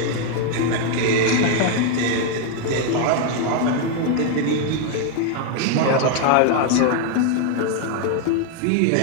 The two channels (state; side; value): different; both; correlation 0.01